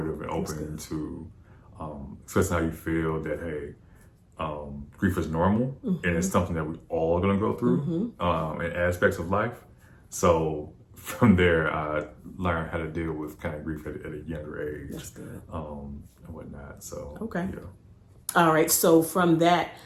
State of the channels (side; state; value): both; identical; correlation 1.00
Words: and open to expressing how you feel, that, hey, grief is normal and it's something that we all are going to go through in aspects of life. So from there, I learned how to deal with kind of grief at a younger age. That's good. And whatnot. So, okay. Yeah. All right. So from that,